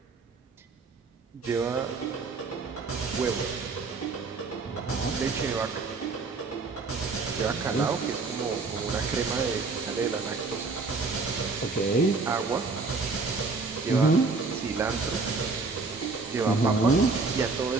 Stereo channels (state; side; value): quieter; left; 4.0 dB